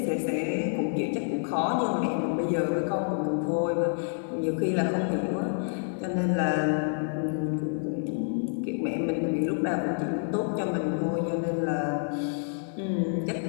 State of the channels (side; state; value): right; silent; digital silence